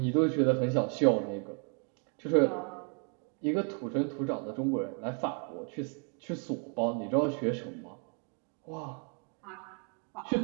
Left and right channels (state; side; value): quieter; left; 39.9 dB